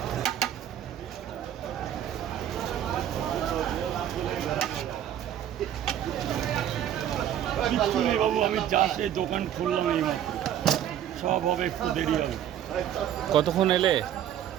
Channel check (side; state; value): left; quieter; 10.7 dB